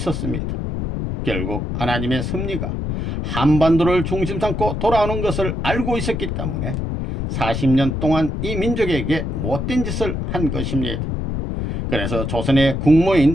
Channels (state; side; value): noise; left; rumble, 3 dB below the sound